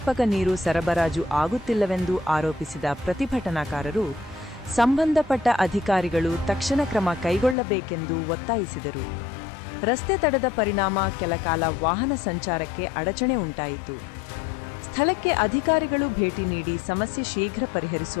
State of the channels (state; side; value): drops out; right; at 7.6 s